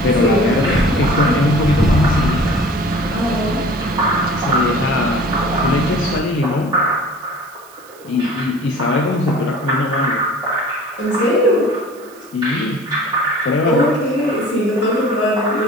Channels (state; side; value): noise; right; hiss, 24 dB below the sound